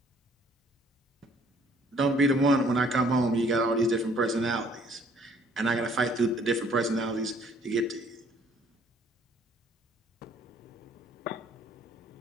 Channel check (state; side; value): normal; both; correlation 0.60